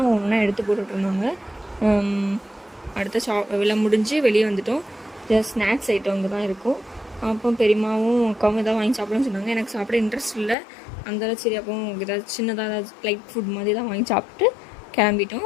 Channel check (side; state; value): right; drops out; at 10.6 s